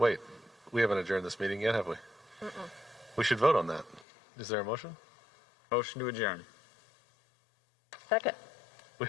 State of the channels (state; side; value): drops out; right; at 4.0 s